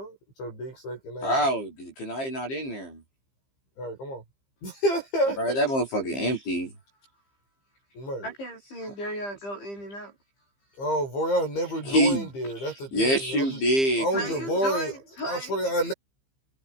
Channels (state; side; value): late; right; 15 ms